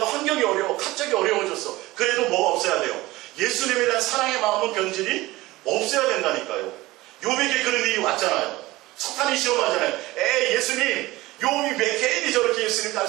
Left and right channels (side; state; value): left; quieter; 19.1 dB